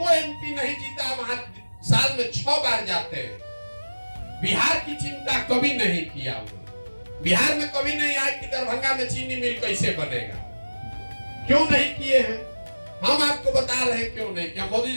एमपी नहीं जीता वहां साल में 6 बार जाते हैं। बिहार की चिंता कभी नहीं किया हुआ। बिहार में कभी नहीं आया कि दरभंगा में चीनी मिल कैसे बनेगा, क्यों नहीं किए हैं? हम आपको बता रहे हैं क्यों नहीं किया। मोदी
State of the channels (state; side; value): inverted; both; correlation -1.00